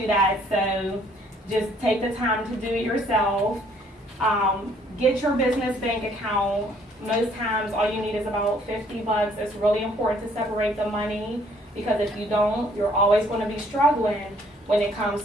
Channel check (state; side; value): normal; both; correlation 0.62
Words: that, so just take the time to do it yourself. Get your business bank account. Most times all you need is about $50. It's really important to separate the money, because if you don't, you're always going to be struggling when it comes